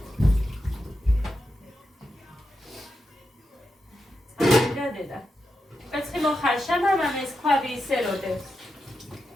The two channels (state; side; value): normal; both; correlation 0.87